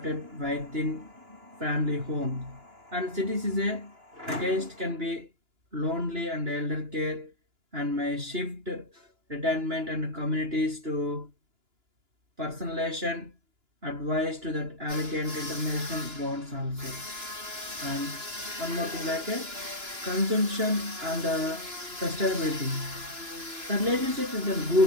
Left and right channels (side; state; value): left; late; 2.9 ms